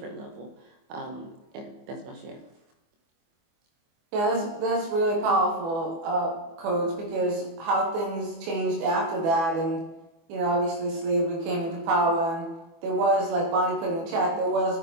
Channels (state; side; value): late; left; 24 ms